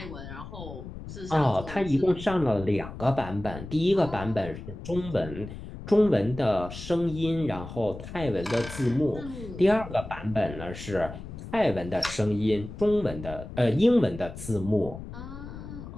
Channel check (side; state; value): left; noise; rumble, 11 dB below the sound